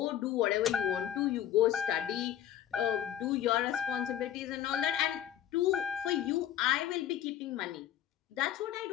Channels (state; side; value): quieter; right; 11.2 dB